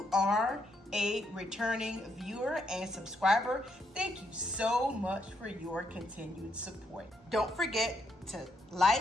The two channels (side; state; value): both; normal; correlation 0.77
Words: are a returning viewer and subscriber, thank you so much for your continued support. Don't forget to